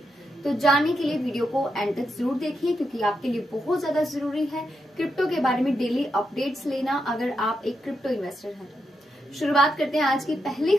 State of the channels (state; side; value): normal; both; correlation 0.84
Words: तो जानने के लिए वीडियो को एंड तक जरूर देखिए, क्योंकि आपके लिए बहुत ज्यादा जरूरी है क्रिप्टो के बारे में डेली अपडेट्स लेना, अगर आप एक क्रिप्टो इन्वेस्टर हैं। शुरुआत करते हैं आज की पहली